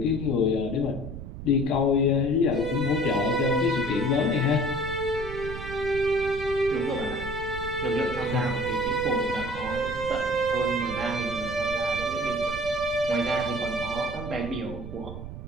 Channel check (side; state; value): right; noise; rumble, 10 dB below the sound